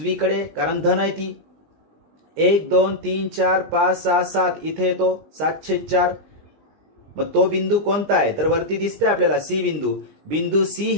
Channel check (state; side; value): late; left; 20 ms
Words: कारण धन आहे ती. 1 2 3 4 5 6 7 इथे येतो 7/4. मग तो बिंदू कोणता आहे? तर वरती दिसतंय आपल्याला सी बिंदू. बिंदू सी